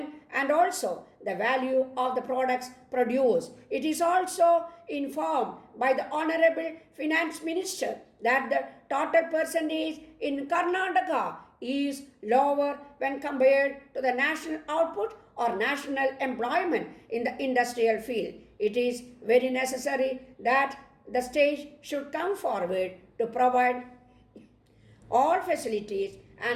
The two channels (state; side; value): identical; both; correlation 1.00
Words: and also the value of the products produced. It is also informed by the Honorable Finance Minister that the total percentage in Karnataka is lower when compared to the national output or national employment in the industrial field. It is very necessary that the state should come forward to provide all facilities